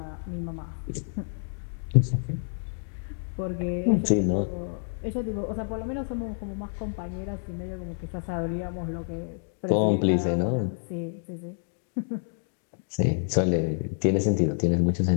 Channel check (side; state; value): right; silent; digital silence